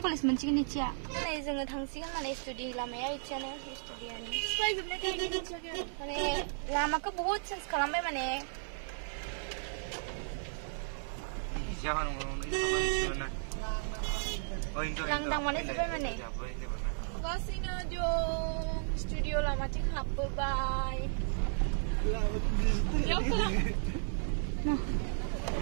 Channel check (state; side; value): silent; left; digital silence